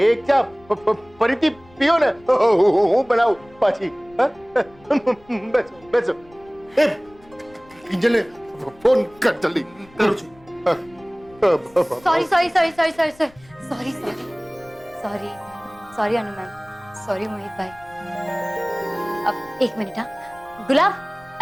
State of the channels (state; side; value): noise; left; rumble, 27 dB below the sound